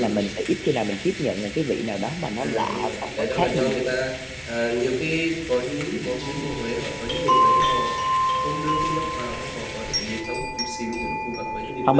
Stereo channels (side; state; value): both; identical; correlation 1.00